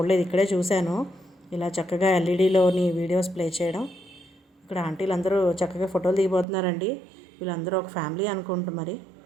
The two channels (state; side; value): drops out; left; at 6.5 s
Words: ఇక్కడే చూశాను ఇలా చక్కగా ఎల్ఈడిలోని వీడియోస్ ప్లే చేయడం. ఇక్కడ ఆంటీలు అందరూ చక్కగా ఫోటోలు దిగిపోతున్నారండి. వీళ్ళందరూ ఒక ఫ్యామిలీ అనుకుంటూ మరి.